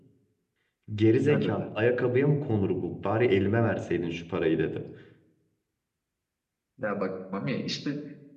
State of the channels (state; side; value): identical; both; correlation 1.00